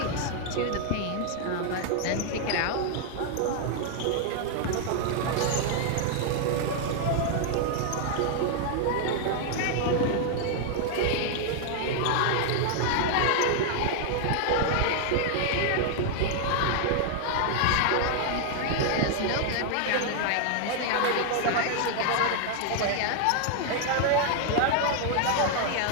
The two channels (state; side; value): different; both; correlation 0.00